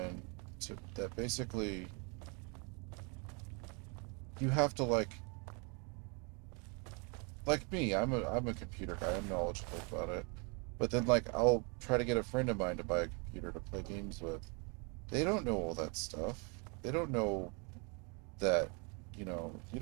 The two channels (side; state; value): left; quieter; 33.5 dB